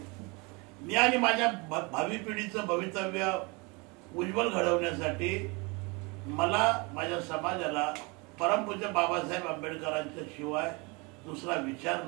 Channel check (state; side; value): quieter; left; 28.3 dB